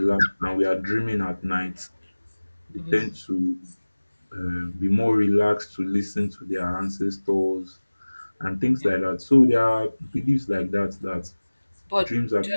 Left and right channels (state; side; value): inverted; both; correlation -1.00